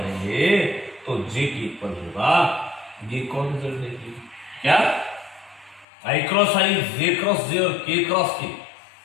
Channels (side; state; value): right; drops out; at 5.9 s